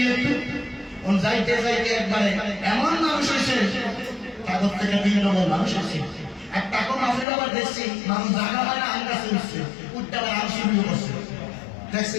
যাইতে যাইতে একবারে এমন মানুষ হয়েছে, তাদের থেকে 3 নম্বর মানুষ হয়েছে। এক টাকা মাফির আবার দেখছি মানুষ জায়গা হয় না, আম গাছে উঠছে, উঠতে আবার আম শুরু করছে।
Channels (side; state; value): right; drops out; at 7.2 s